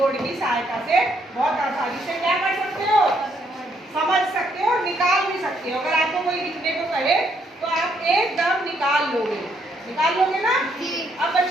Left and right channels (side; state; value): both; normal; correlation 0.72